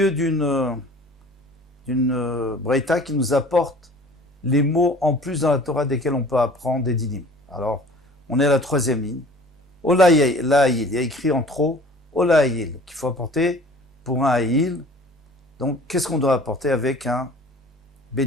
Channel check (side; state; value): both; normal; correlation 0.47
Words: d'une braïta qui nous apporte les mots en plus dans la Torah desquels on peut apprendre des dinim. Alors, on est à la troisième ligne. Olaïl, il y a écrit en trop Olaïl, qu'il faut apporter pour un Aïl. Donc, qu'est-ce qu'on doit apporter avec un